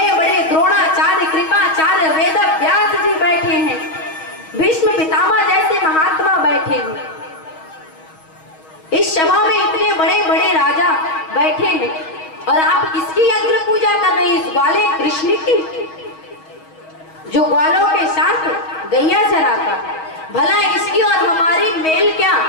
बड़े द्रोणाचार्य, कृपाचार्य, वेद व्यास जी बैठे हैं, भीष्म पितामह जैसे महात्मा बैठे हैं। इस सभा में इतने बड़े बड़े राजा बैठे हैं, और आप किसकी अग्र पूजा कर रहे हैं? इस ग्वाले कृष्ण की, जो ग्वालों के साथ गैया चराता। भला इसकी और हमारी मेल क्या,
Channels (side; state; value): right; late; 6.3 ms